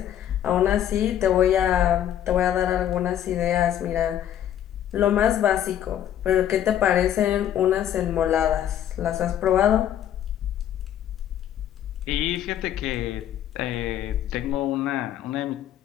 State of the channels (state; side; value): quieter; right; 10.8 dB